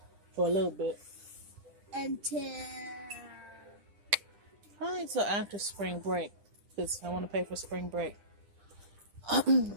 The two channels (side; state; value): left; late; 9.9 ms